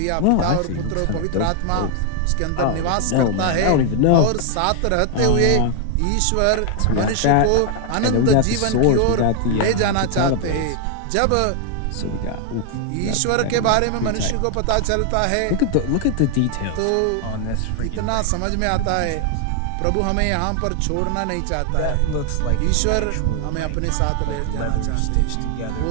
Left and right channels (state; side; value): different; both; correlation 0.00